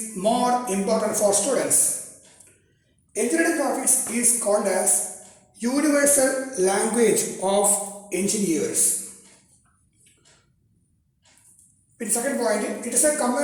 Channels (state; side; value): identical; both; correlation 1.00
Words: more important for students? Engineering graphics is called as universal language of engineers. In second point, it is a